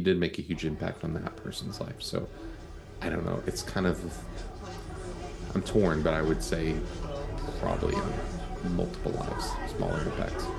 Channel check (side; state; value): both; identical; correlation 1.00